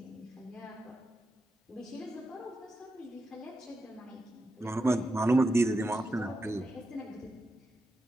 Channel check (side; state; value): both; normal; correlation 0.88